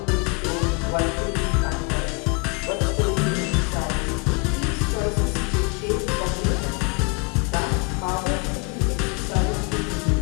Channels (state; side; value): quieter; right; 32.4 dB